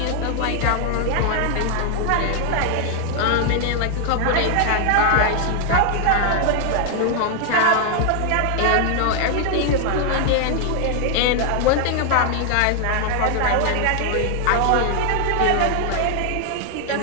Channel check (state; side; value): different; both; correlation 0.00